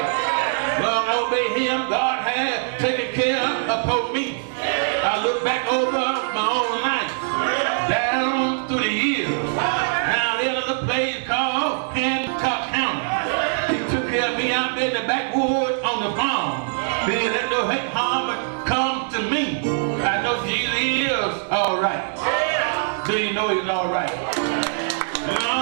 Learn to obey him, God has taken care of me. I look back over my own life, down through the years. Now there's a place called Hancock County. He took care of me out there in the backwoods on the farm. He didn't let no hate, harm come to me. I know Jesus is all right. Do you know he's all right?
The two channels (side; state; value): left; silent; digital silence